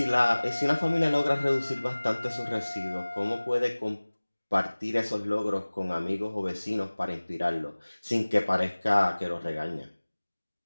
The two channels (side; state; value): both; inverted; correlation -1.00